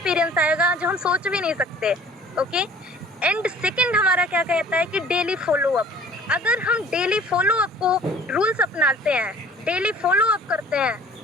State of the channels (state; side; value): normal; both; correlation 0.50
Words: आएगा जो हम सोच भी नहीं सकते। ओके, एंड सेकंड हमारा क्या कहता है कि डेली फॉलो अप। अगर हम डेली फॉलो अप को रूल्स अपनाते हैं, डेली फॉलो अप करते हैं,